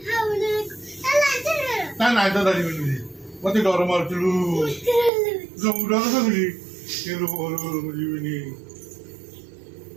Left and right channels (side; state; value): left; drops out; at 5.1 s